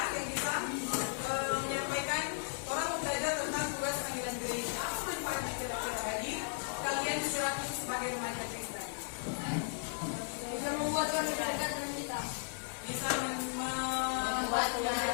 yang bisa menyampaikan orang belajar tentang tugas panggilan gereja? Apa manfaatnya kira-kira bagi kalian secara khusus sebagai remaja Kristen? Bisa membuat kami dekat dengan kita. Bisa membuat lebih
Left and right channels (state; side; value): silent; right; 54 dB below the other